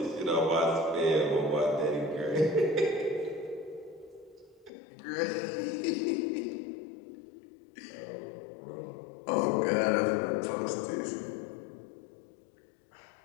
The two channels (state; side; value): drops out; right; at 4.7 s